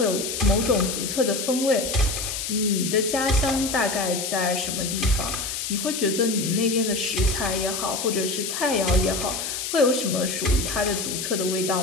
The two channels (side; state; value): left; noise; hiss, 4 dB below the sound